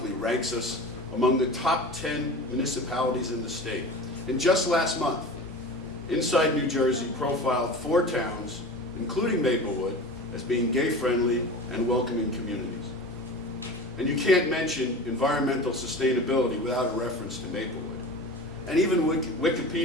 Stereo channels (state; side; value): normal; both; correlation 0.34